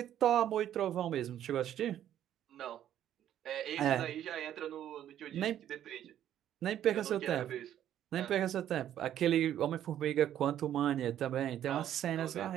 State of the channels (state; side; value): quieter; left; 11.1 dB